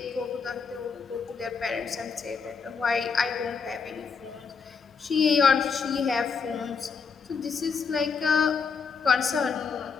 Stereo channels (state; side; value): quieter; right; 5.5 dB